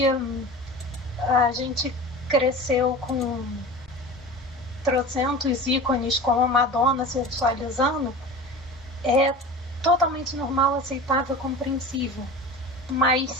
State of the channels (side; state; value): both; normal; correlation 0.34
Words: a gente cresceu com trocentos ícones como a Madonna sexualizando, é totalmente normal, aceitável, compreensível. Mas